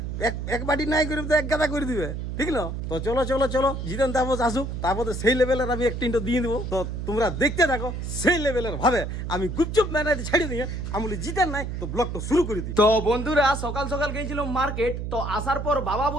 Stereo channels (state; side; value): noise; right; hum, 5 dB below the sound